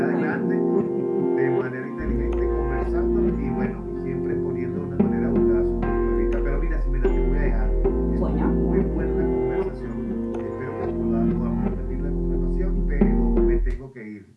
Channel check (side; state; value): both; identical; correlation 1.00